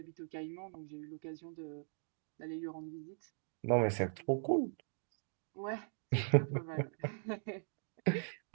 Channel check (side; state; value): left; silent; digital silence